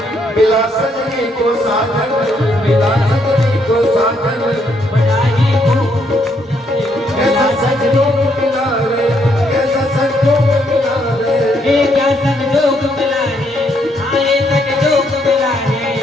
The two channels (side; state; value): both; normal; correlation 0.73